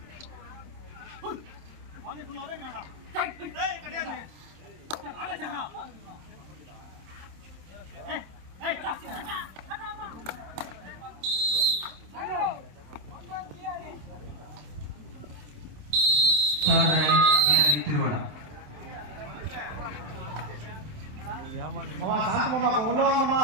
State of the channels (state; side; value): late; left; 27 ms